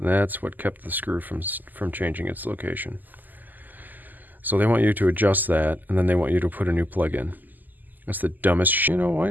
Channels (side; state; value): left; late; 0.085 ms